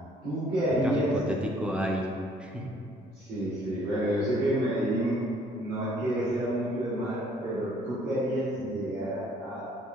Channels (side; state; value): both; normal; correlation 0.61